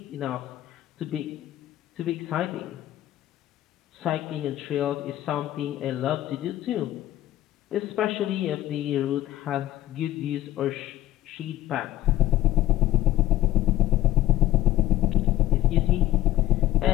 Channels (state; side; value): quieter; right; 14.3 dB